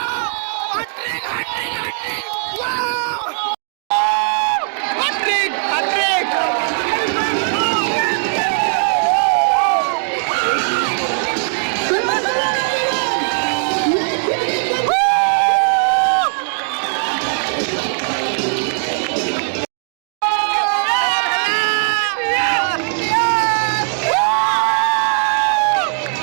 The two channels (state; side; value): silent; left; digital silence